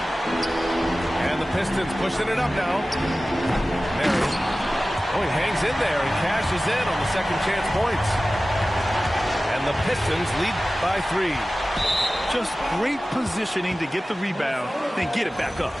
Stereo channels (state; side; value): normal; both; correlation 0.96